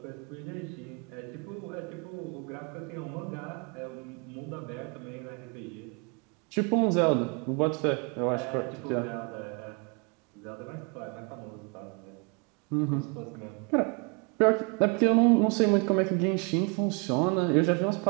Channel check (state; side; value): quieter; left; 33.4 dB